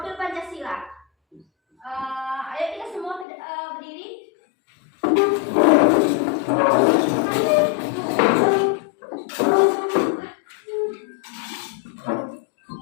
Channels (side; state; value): right; drops out; at 3.2 s